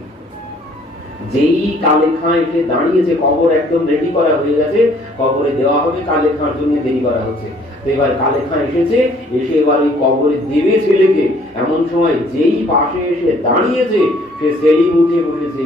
যেই কালে খাঁ এসে দাঁড়িয়েছে, কবর একদম রেডি করা হয়ে গেছে, কবরে দেওয়া হবে, কালে খাঁর জন্য দেরি করা হচ্ছে। তো এবার কালে খাঁ এসেছে, এসে এবার ওই কবরে দেবে ছেলেকে। এমন সময় যেই পাশে এসে দাঁড়িয়েছে, সে সেলিম উঠে বসেছে।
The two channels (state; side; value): normal; both; correlation 0.59